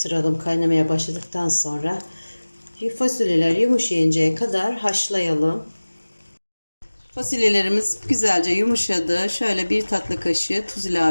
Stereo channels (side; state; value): both; inverted; correlation -1.00